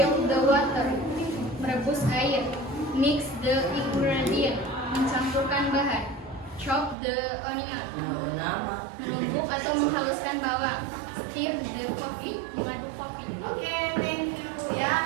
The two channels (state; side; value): drops out; left; at 7.0 s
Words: the water, merebus air. Mix the ingredient, mencampurkan bahan. Chop the onion, menumbuk atau menghaluskan bawang. Stir the coffee, mengaduk kopi. Oke, thank you